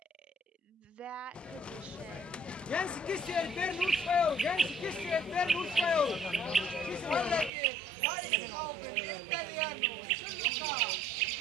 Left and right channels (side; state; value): left; drops out; at 7.5 s